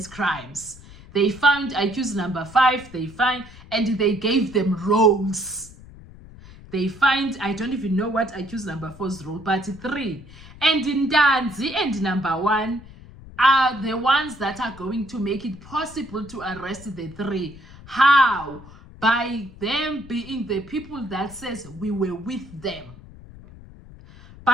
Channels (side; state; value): left; noise; rumble, 19 dB below the sound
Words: crimes. They found accused number 5, and they gave them roles. They find, I don't even know what accused number 4's role, but 3. And Ntanzi and number 1 are the ones that are going to make it possible to arrest the 3. How? By them being the people that says we were with them.